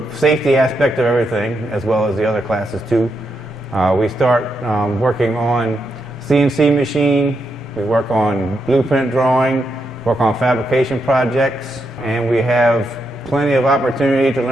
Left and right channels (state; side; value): normal; both; correlation 0.82